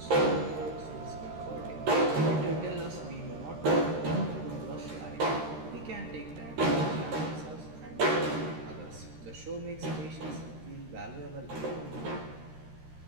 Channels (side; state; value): left; late; 13 ms